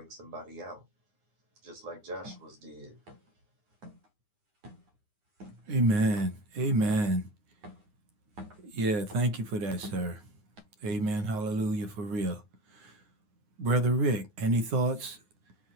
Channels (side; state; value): left; late; 9.6 ms